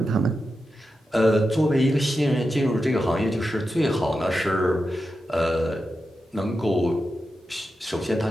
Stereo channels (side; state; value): both; normal; correlation 0.90